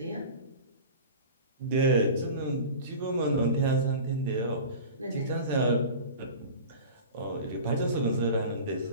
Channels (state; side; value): inverted; both; correlation -0.35